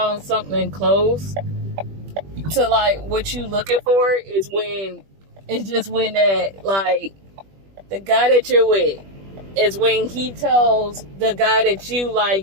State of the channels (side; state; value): left; late; 20 ms